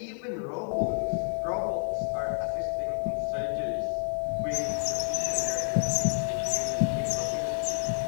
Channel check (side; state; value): right; silent; digital silence